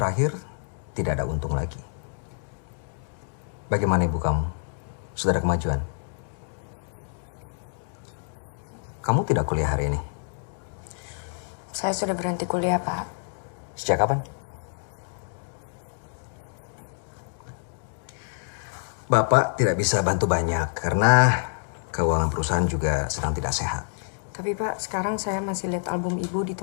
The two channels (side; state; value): right; silent; digital silence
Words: tidak ada untung lagi. Bagaimana ibu kamu? Sudah ada kemajuan? Kamu tidak kuliah hari ini? Saya sudah berhenti kuliah, Pak. Sejak kapan? Bapak tidak bisa bantu banyak karena keuangan perusahaan juga sedang tidak sehat. Tapi Pak, sekarang saya masih lihat album Ibu di